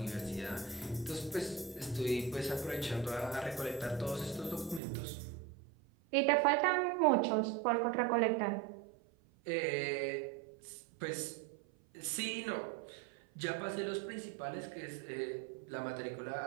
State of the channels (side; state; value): left; drops out; at 4.8 s